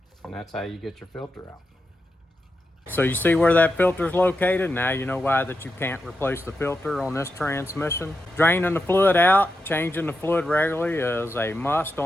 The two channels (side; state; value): both; normal; correlation 0.88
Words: And that's how you get your filter out. So you see where that filter is located? Now you know why that you can't replace the filter on this transmission. Draining the fluid out, changing the fluid regularly is a must